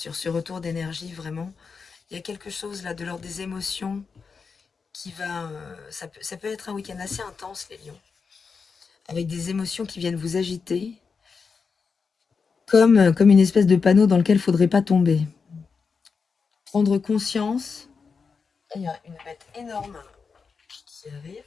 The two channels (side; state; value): right; quieter; 5.3 dB